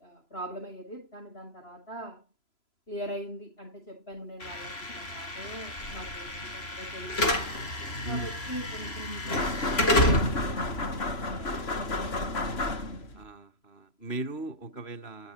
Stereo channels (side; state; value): right; late; 3.0 ms